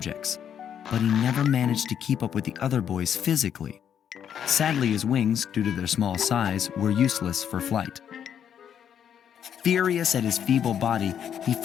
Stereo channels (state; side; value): quieter; right; 8.8 dB